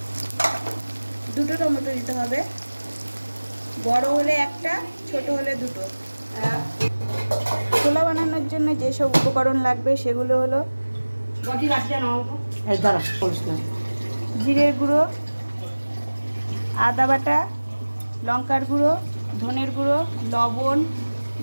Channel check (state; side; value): inverted; both; correlation -1.00